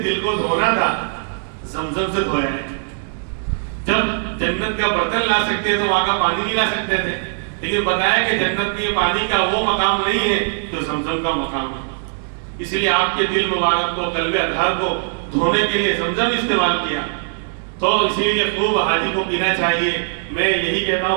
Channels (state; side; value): silent; left; digital silence